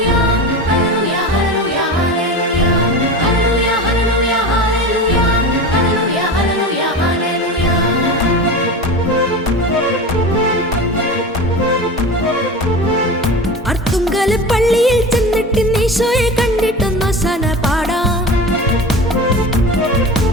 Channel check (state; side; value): normal; both; correlation 0.30